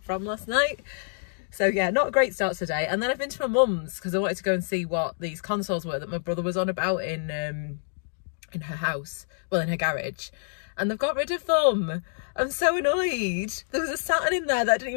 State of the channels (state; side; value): silent; right; digital silence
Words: from last night. So yeah, not a great start to the day. And then I've been to my mum's because I wanted to go and see what these consoles were that my brother was on about in her house, well, in her garage. And they've got rid of them. I'm so annoyed. There was a Saturn in there that I didn't